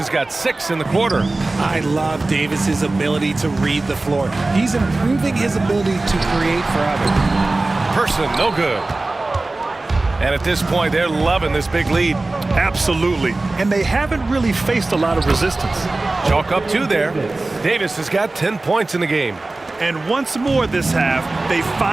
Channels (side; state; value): left; quieter; 3.1 dB